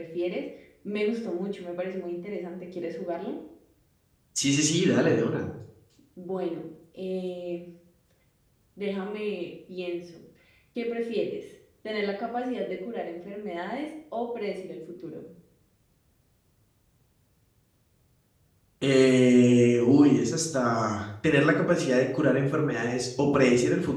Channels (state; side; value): identical; both; correlation 1.00